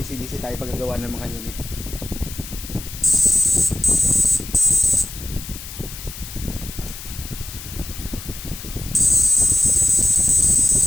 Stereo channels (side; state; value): left; noise; hiss, 12 dB below the sound